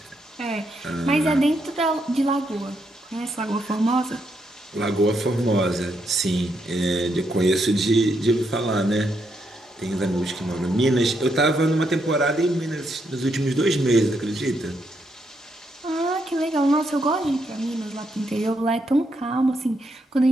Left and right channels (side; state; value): both; normal; correlation 0.78